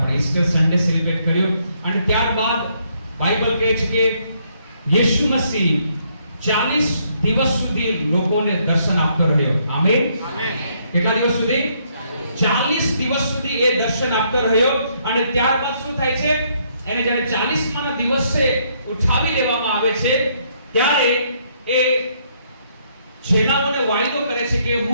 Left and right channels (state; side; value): inverted; both; correlation -0.71